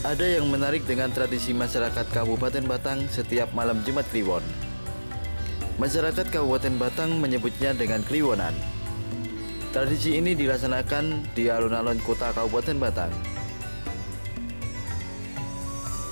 Ada yang menarik dengan tradisi masyarakat Kabupaten Batang setiap malam Jumat Kliwon. Masyarakat Kabupaten Batang menyebutnya dengan Kliwonan. Tradisi ini dilaksanakan di alun-alun kota Kabupaten Batang.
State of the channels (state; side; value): inverted; both; correlation -1.00